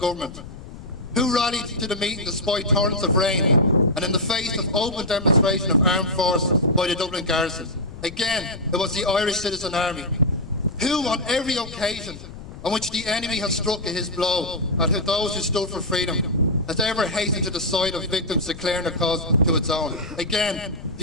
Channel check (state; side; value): noise; left; rumble, 14 dB below the sound